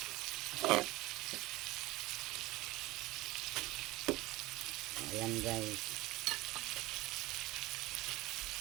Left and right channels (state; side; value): quieter; left; 19.4 dB